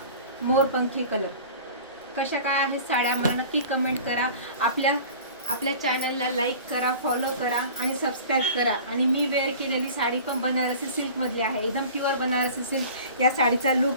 मोरपंखी कलर। कशा काय आहेत साड्या मला नक्की कमेंट करा। आपल्या चॅनलला लाईक करा, फॉलो करा आणि सबस्क्राईब करा। आणि मी वेअर केलेली साडी पण बनारसी सिल्कमधली आहे, एकदम प्युअर बनारसी सिल्क या साडीचा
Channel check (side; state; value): both; inverted; correlation -0.41